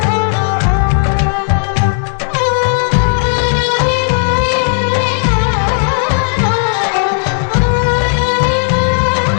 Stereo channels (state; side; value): silent; right; digital silence